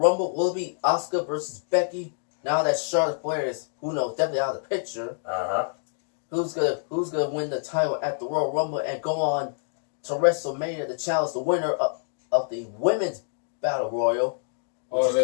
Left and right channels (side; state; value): right; silent; digital silence